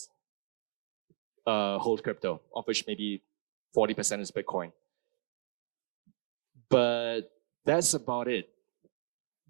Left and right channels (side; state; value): left; silent; digital silence